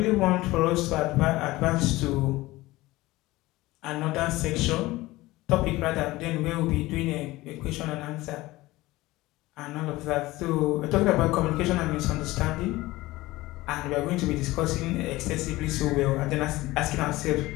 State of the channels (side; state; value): right; quieter; 19.0 dB